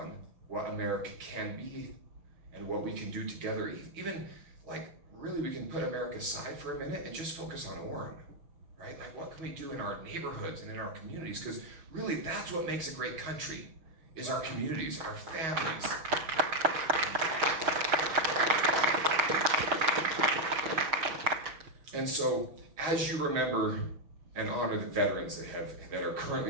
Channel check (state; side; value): late; left; 6.4 ms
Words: what America can be and what we can do together, even really we can put America aside for a minute and just focus on Orem, right? Like, what can we do in our neighborhoods and in our communities? Because really that's what makes a great country, is our communities, our families. And so, as you remember and honor the veterans that are